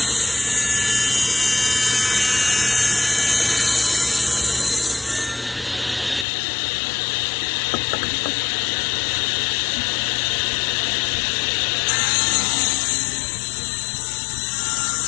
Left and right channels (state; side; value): drops out; right; at 6.2 s